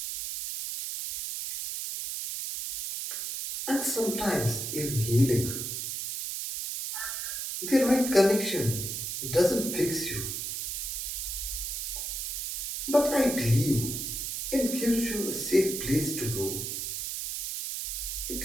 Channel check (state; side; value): noise; right; hiss, 4 dB below the sound